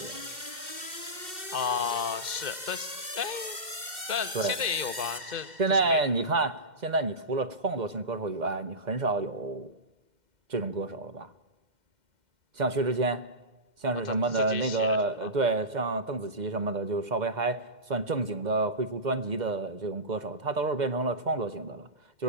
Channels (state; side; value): late; left; 2.1 ms